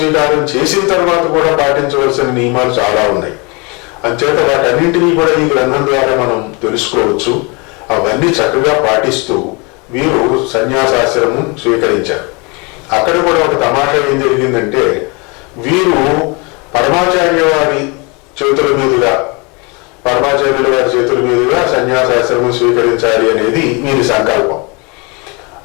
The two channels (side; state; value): right; quieter; 29.6 dB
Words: చేసిన తర్వాత కూడా పాటించవలసిన నియమాలు చాలా ఉన్నాయి. అంచేత వాటన్నింటినీ కూడా ఈ గ్రంథం ద్వారా మనం తెలుసుకోవచ్చు. అవన్నీ చక్కగా పాటిస్తూ వీరు సన్యాసాశ్రమం స్వీకరించారు. అక్కడ కూడా ఒక తమాషా ఏం జరిగిందంటే, వీరు పరమాచార్యుల వారి చేతుల మీదుగా సన్యాసాశ్రమం స్వీకరించాలి అనేది వీరి సంకల్పం.